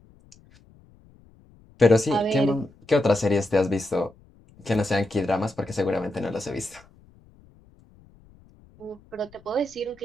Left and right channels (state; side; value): noise; left; rumble, 28 dB below the sound